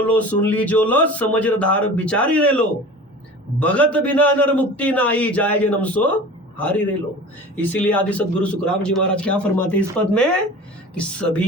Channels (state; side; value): normal; both; correlation 0.38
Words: लो, सुन ली जो लो, समझदार बिचारी रे लो, भगत बिना नर मुक्ति नाई, जाए जन्म सो हारी रे लो। इसीलिए आदि सदगुरु सुखराम जी महाराज क्या फरमाते इस पद में कि